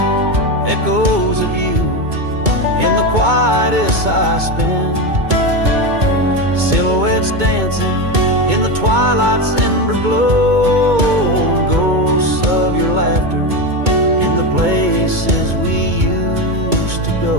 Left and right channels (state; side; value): late; left; 2.2 ms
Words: echoes of you in the quietest I spend. Silhouettes dancing in the twilight's ember glow, ghosts of your laughter in the places we used to